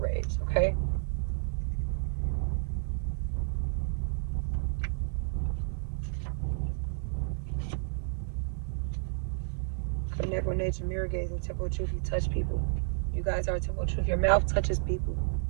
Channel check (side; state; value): left; silent; digital silence